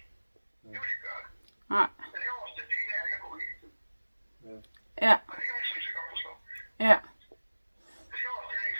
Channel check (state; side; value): inverted; both; correlation -1.00